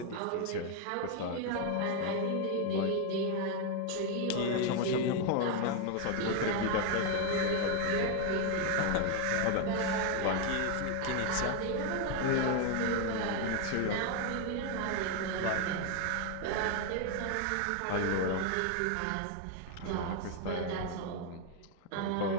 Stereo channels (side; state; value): both; different; correlation 0.01